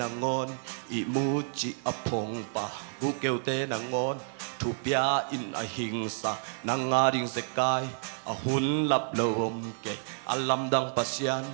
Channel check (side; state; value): left; silent; digital silence